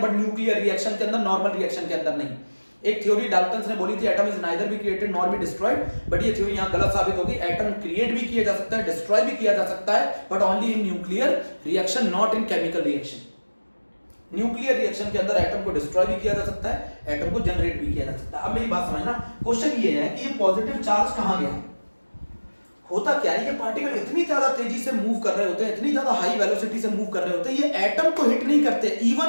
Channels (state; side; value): inverted; both; correlation -1.00